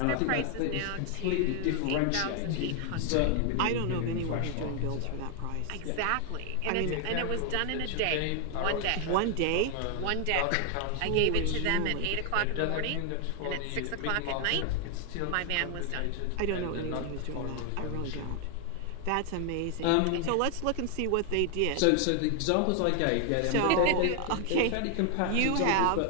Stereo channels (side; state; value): both; different; correlation 0.00